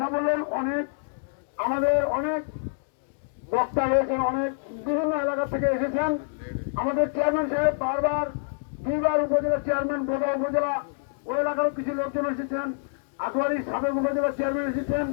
বললেন। আমাদের অনেক বক্তা রয়েছেন, অনেক বিভিন্ন এলাকা থেকে এসেছেন। আমাদের চেয়ারম্যান সাহেব বারবার 2বার উপজেলা চেয়ারম্যান, বোদা উপজেলা ওই এলাকারও কিছু লোকজন এসেছেন, আটোয়ারি সাবেক উপজেলা চেয়ারম্যান এসেছেন।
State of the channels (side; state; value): right; silent; digital silence